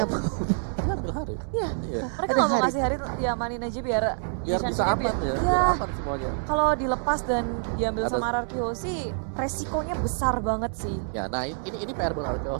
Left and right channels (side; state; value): left; silent; 60 dB below the other